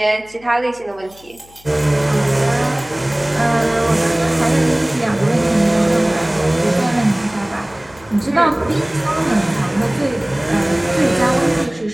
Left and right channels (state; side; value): noise; left; hum, 26 dB below the sound